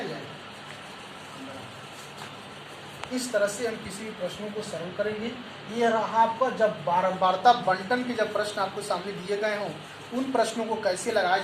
जाएगा। इस तरह से हम किसी भी प्रश्नों को सरल करेंगे। ये रहा आपका जब बारंबारता बंटन के जब प्रश्न आपको सामने दिए गए हों उन प्रश्नों को कैसे लगाए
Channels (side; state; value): both; identical; correlation 1.00